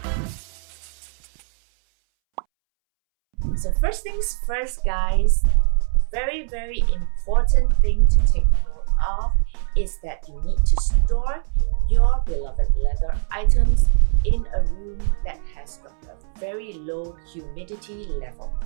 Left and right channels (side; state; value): left; silent; 65 dB below the other